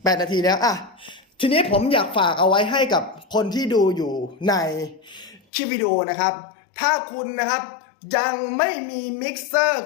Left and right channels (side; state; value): right; drops out; at 5.4 s